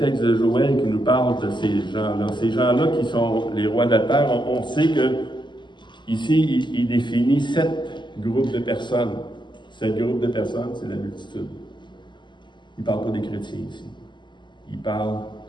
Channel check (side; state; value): right; late; 0.22 ms